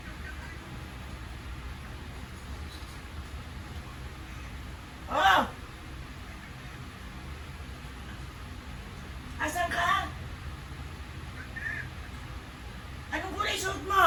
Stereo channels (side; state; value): both; identical; correlation 1.00